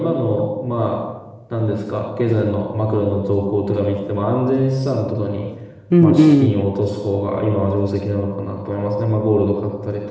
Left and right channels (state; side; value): identical; both; correlation 1.00